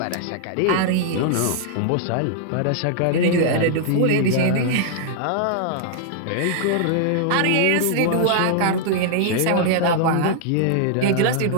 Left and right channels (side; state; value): both; different; correlation -0.01